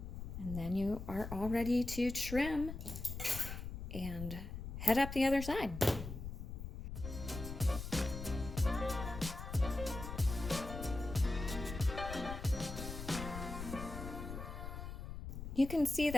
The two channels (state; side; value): noise; left; rumble, 7 dB below the sound